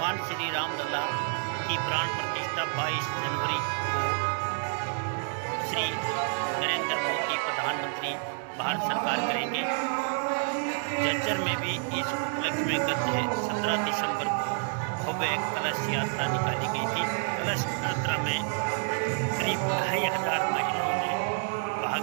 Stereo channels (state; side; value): silent; left; 59 dB below the other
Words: भगवान श्री रामलला की प्राण प्रतिष्ठा 22 जनवरी को श्री नरेंद्र मोदी प्रधानमंत्री भारत सरकार करेंगे। झज्जर में भी इस उपलक्ष्य में गत 17 दिसंबर को भव्य कलश यात्रा निकाली गई थी। कलश यात्रा में करीब 2,500 महिलाओं ने भाग